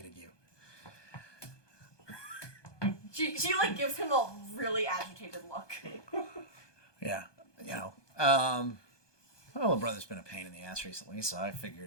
you. She like gives him a really agitated look. Yeah. You know. My little brother's been a pain in the ass recently, so I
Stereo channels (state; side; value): late; right; 1.2 ms